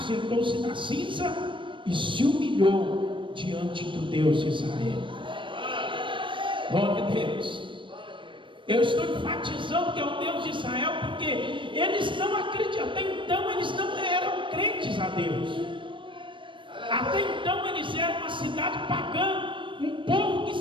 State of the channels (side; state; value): left; late; 0.24 ms